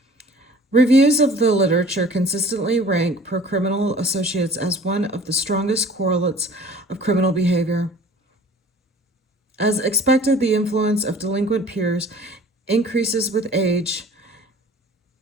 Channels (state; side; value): normal; both; correlation 0.48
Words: Reviews of the literature consistently rank pro-criminal associates as one of the strongest correlates of criminal behavior. As expected, the influence of delinquent peers increases with age.